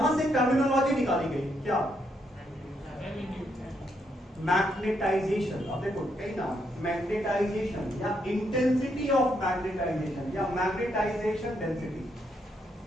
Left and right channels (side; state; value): both; normal; correlation 0.77